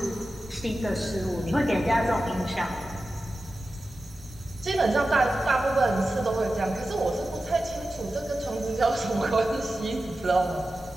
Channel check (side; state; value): both; normal; correlation 0.93